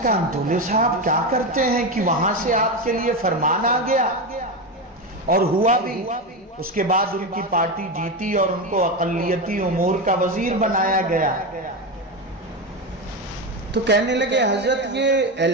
کہا انتولے صاحب کیا کرتے ہیں کہ وہاں سے آپ کے لیے فرمان آ گیا، اور ہوا بھی، اس کے بعد ان کی پارٹی جیتی اور ان کو اقلیتی امور کا وزیر بنایا گیا۔ تو کہنے لگے حضرت یہ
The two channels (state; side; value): normal; both; correlation 0.15